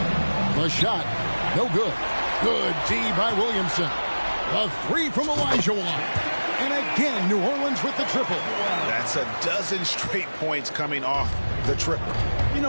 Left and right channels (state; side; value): inverted; both; correlation -1.00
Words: The shot. No good. Good D by Williamson. A three from Olajuwon. And again, New Orleans with the triple. That's a dozen straight points coming off the triple. You